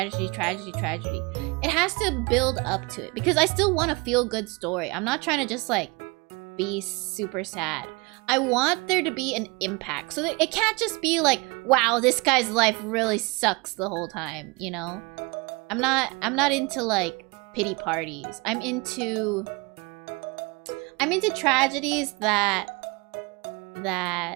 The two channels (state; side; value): quieter; left; 27.5 dB